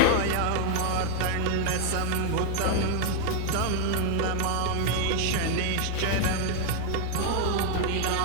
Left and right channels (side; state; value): both; different; correlation 0.00